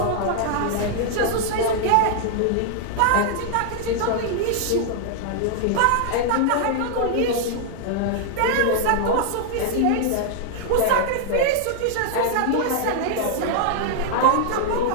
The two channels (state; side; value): different; both; correlation 0.00